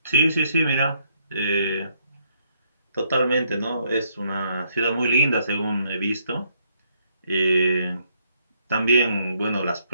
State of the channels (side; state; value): both; inverted; correlation -0.72